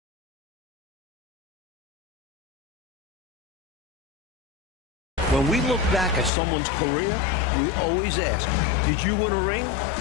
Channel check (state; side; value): drops out; right; at 6.3 s